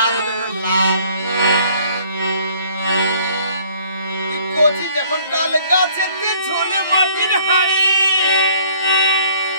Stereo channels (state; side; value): inverted; both; correlation -0.57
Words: তোর লাল কচি যখন তাল গাছেতে ঝুলে মাটির হাড়ি